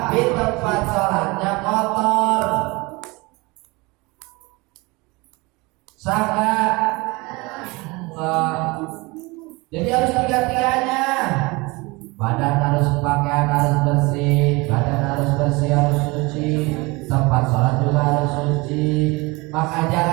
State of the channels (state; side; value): quieter; left; 24.8 dB